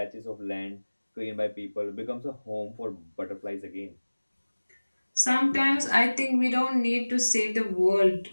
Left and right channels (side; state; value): both; inverted; correlation -1.00